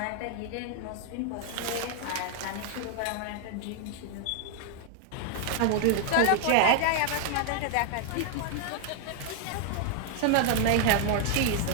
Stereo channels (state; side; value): different; both; correlation 0.00